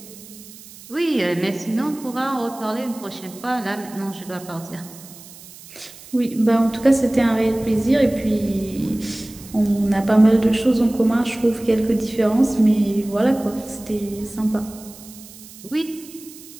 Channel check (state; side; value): noise; right; hiss, 19 dB below the sound